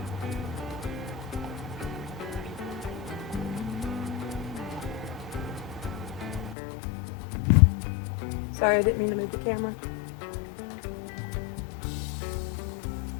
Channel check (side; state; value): right; drops out; at 6.6 s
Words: Sorry, I didn't mean to move the camera.